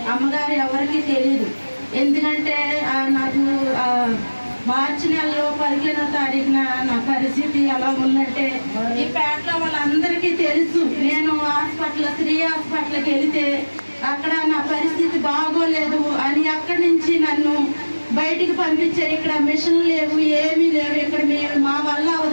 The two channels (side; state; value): both; inverted; correlation -1.00